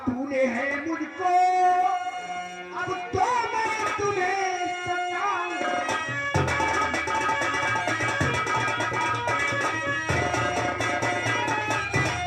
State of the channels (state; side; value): identical; both; correlation 1.00